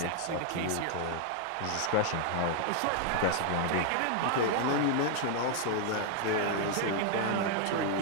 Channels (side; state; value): both; different; correlation 0.00